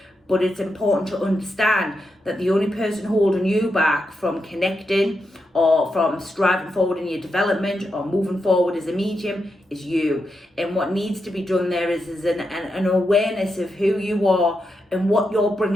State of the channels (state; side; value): normal; both; correlation 0.85